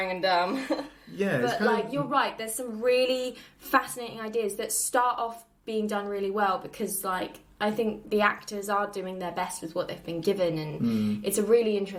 and dumb. But like, you're right, there's some really fascinating ideas that start off being done really well, because like I think the actors are doing their best with what they've been given, and it's a really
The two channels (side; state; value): both; identical; correlation 1.00